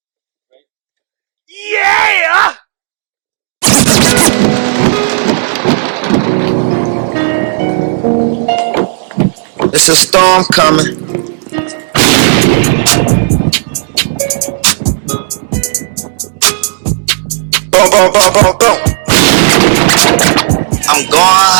Yeah. It's a storm coming. Boom, boom, boom, boom, boom. I'm going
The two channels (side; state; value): left; silent; digital silence